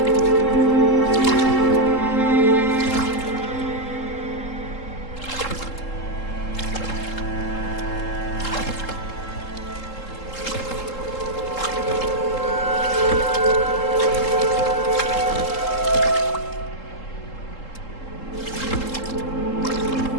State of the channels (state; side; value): late; right; 3.7 ms